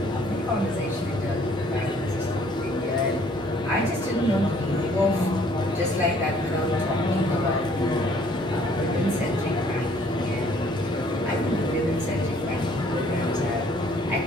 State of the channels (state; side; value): normal; both; correlation 0.60